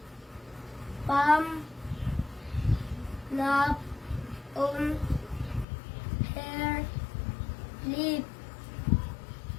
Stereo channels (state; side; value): drops out; right; at 5.7 s